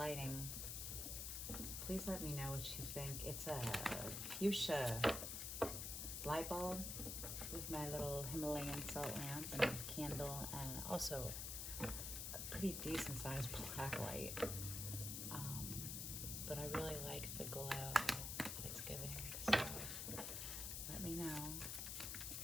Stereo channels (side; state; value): left; noise; hiss, 3 dB below the sound